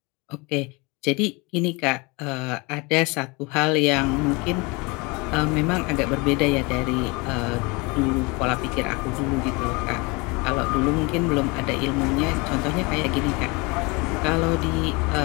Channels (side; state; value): right; quieter; 27.3 dB